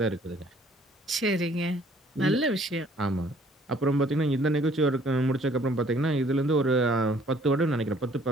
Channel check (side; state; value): both; normal; correlation 0.59